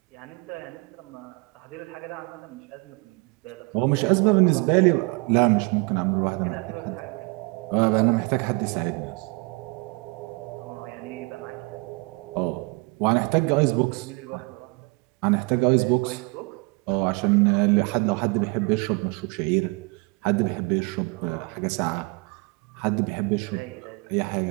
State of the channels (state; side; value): quieter; left; 28.6 dB